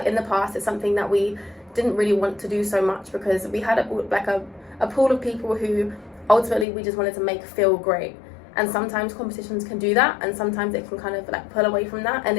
in the past, it's something that we didn't really want to do so much because we had a pool of people who ultimately we just wanted to make feel great. And sometimes competitions can do that, and sometimes it can kind of like pull away from that. And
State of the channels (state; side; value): drops out; right; at 6.7 s